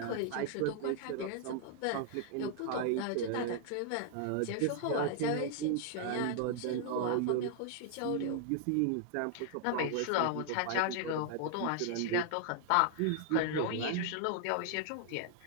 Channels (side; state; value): both; different; correlation 0.00